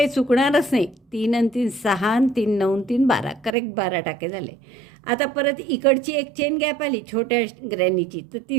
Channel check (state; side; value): drops out; left; at 3.6 s